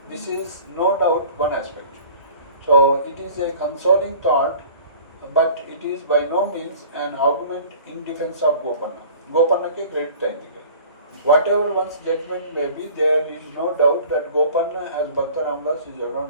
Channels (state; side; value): inverted; both; correlation -0.45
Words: This is no doubt one aspect. So it is a consoling thought, but it is by no means an argument in defence of Gopanna. గోపన్నకే క్రెడిట్ అయింది. Whatever one's judgment may be, there is no doubt that Gopanna as Bhakta Ramadas is